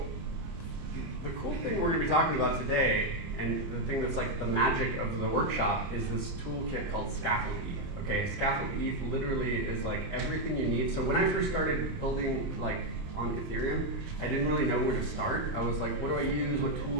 the cool thing we're going to be talking about today, and the thing that's like the magic of the workshop, is this toolkit called Scaffold E. Okay, Scaffold E literally is like everything you need. So when I first started building like on Ethereum, I didn't really know where to start. I was like, what do I use? What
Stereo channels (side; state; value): left; late; 29 ms